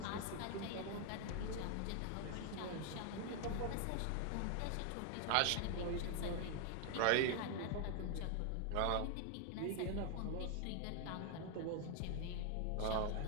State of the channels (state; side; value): different; both; correlation 0.00